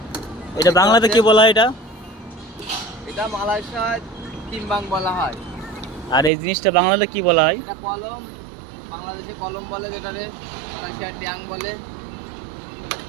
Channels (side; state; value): left; drops out; at 6.3 s